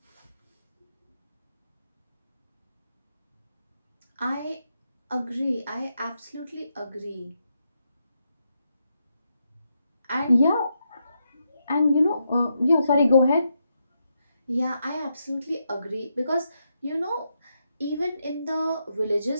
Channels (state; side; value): inverted; both; correlation -0.82